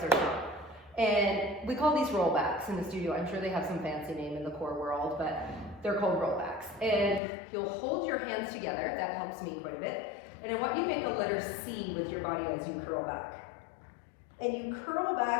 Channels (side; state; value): right; drops out; at 7.2 s